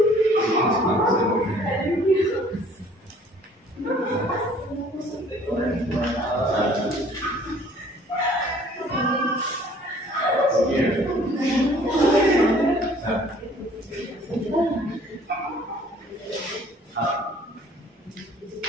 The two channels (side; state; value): both; normal; correlation 0.55